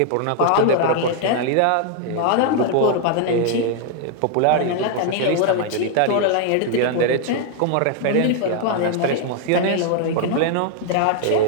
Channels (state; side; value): different; both; correlation 0.00